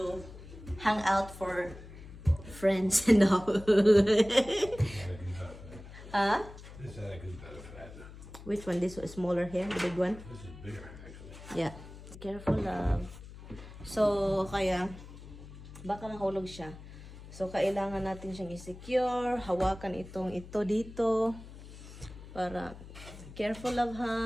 hang out for friends and all. Huh? This attic is better for that. Which one? This is smaller here? The big one? This is bigger, actually. Yeah. Careful, love. So, kaya, baka mahulog siya. So, kailangan natin siyang i-secure. Hawakan ito dito. Para, careful, love,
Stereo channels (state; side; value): noise; left; hum, 15 dB below the sound